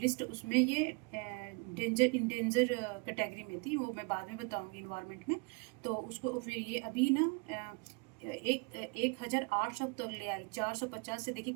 उसमें ये इंडेंजर कैटेगरी में थी, वो मैं बाद में बताऊंगी इन्वायरमेंट में। तो उसको फिर ये अभी ना 1800 तक ले आई, 450 से देखिए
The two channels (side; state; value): left; quieter; 31.5 dB